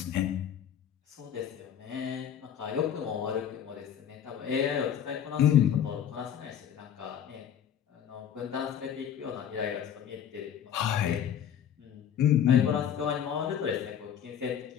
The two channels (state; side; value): quieter; right; 9.2 dB